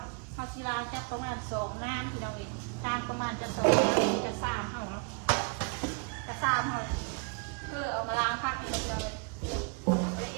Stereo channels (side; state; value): left; quieter; 33.6 dB